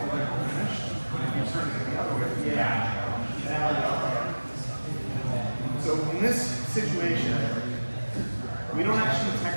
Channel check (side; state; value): both; inverted; correlation -1.00